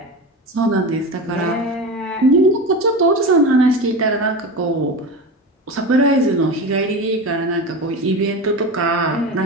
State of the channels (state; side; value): normal; both; correlation 0.25